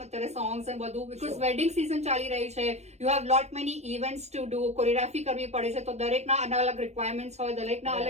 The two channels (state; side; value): late; left; 0.32 ms